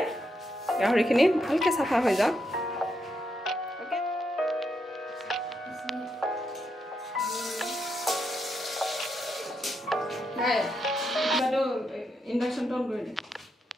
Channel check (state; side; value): normal; both; correlation 0.81